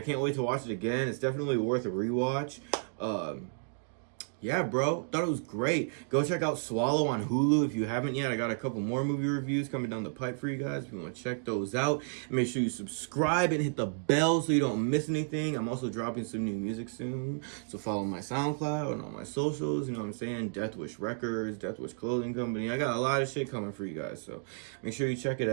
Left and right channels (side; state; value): left; silent; digital silence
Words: can't wait to watch it again. It's definitely worth a rewatch. Yeah, bro. Thought it was great. Go check out Swallow on Hulu if you haven't yet. I got a couple more movie reviews coming down the pipe for you guys if you want to check those out. Make sure you subscribe and hit the bell so you don't miss anything. I'm also dropping some new music soon. So follow my SoundCloud and all my socials. You know what I'm saying? Death Wish Records, Death Wish Clothing Company. I got a lot of shit coming for you guys. So make sure you check it